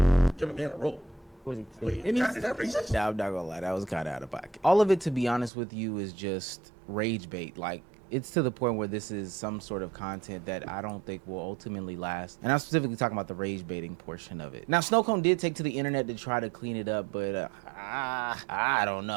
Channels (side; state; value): left; drops out; at 5.5 s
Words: Give a man a roll. Wait, It means- is that racist? Yeah, I'm not gonna lie, that was kind of out of pocket. All of it, to be honest with you, is just rage bait. Like, it's to the point where this is some sort of content that I don't think will ultimately last. And I'm specifically talking about the rage baiting portion of it. Now, Snowcone did take to the internet to try to clean it up, but I don't